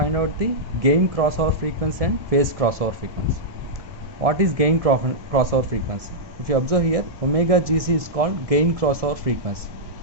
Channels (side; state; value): left; late; 1.7 ms